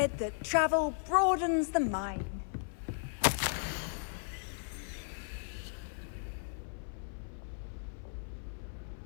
that travel broadens the mind.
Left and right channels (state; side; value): silent; right; 54 dB below the other